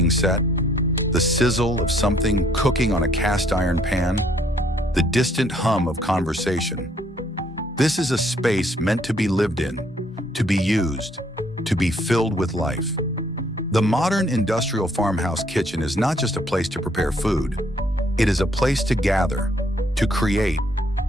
set, the sizzle of something cooking on a cast iron pan, the distant hum of conversation. This is a space meant to be lived in, to be used, to be filled with life. The modern industrial farmhouse kitchen is not just a place to prepare food. It is a place to gather, to create,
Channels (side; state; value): both; normal; correlation 0.66